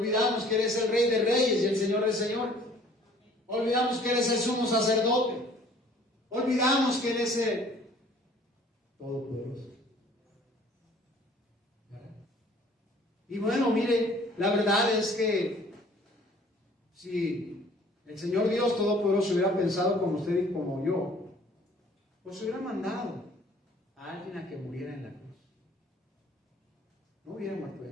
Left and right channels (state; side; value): normal; both; correlation 0.54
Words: que eres el Rey de Reyes y el Señor de Señores. Olvidamos que eres el sumo sacerdote. Olvidamos que eres el Todopoderoso. Y bueno, mire, la verdad es que si el Señor Dios Todopoderoso hubiera pensado como usted y como yo, pues hubiera mandado a alguien a que muriera en la cruz. No hubiera muerto